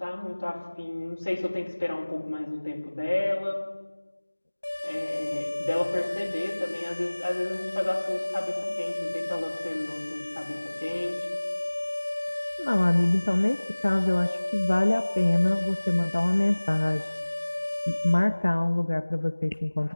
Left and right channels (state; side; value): inverted; both; correlation -1.00